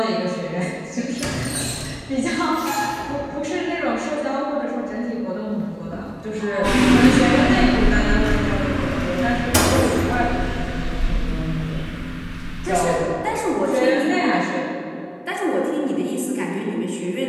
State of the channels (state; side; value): identical; both; correlation 1.00